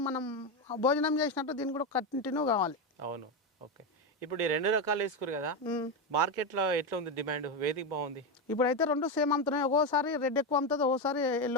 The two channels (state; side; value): normal; both; correlation 0.11